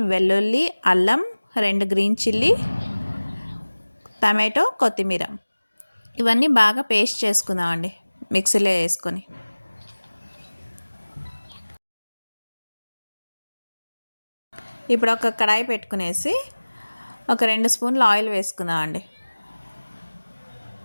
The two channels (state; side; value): inverted; both; correlation -1.00